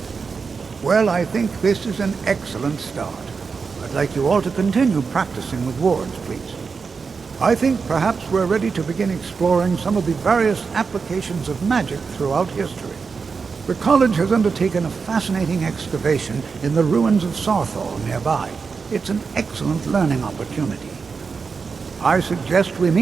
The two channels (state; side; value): quieter; left; 5.1 dB